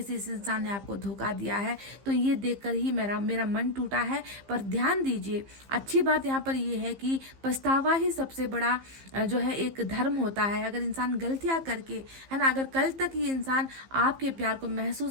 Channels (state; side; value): late; left; 15 ms